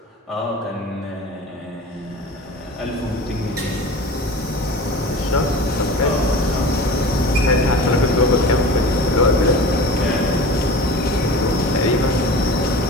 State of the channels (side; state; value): both; normal; correlation 0.36